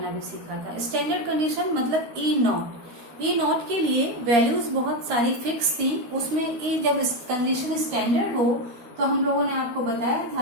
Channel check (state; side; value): late; left; 13 ms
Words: भी सीखा था। स्टैंडर्ड कंडीशन मतलब ई नॉट के लिए वैल्यूज बहुत सारी फिक्स थी। उसमें ई जब कंडीशन स्टैंडर्ड हो तो हम लोगों ने आपको बताया